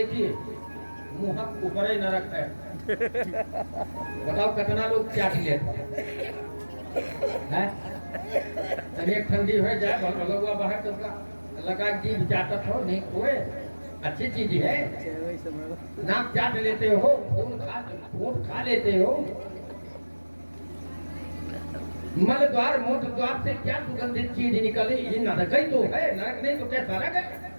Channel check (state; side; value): inverted; both; correlation -1.00